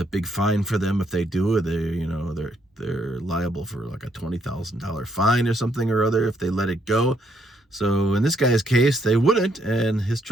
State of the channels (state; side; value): normal; both; correlation 0.73